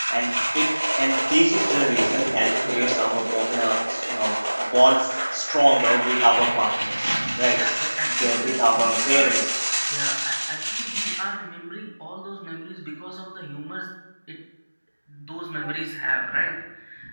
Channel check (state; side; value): inverted; both; correlation -1.00